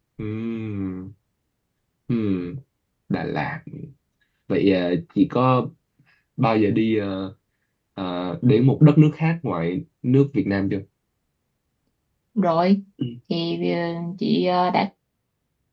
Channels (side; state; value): both; identical; correlation 1.00